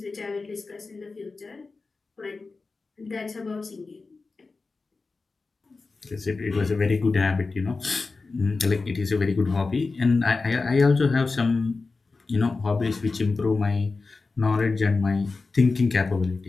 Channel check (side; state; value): right; quieter; 4.0 dB